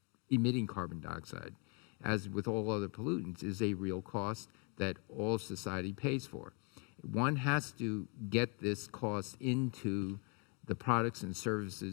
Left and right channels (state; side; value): quieter; right; 36.0 dB